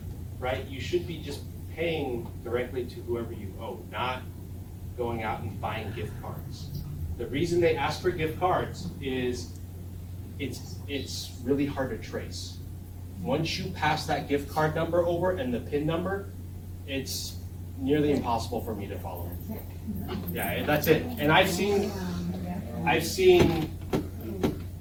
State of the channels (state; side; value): identical; both; correlation 1.00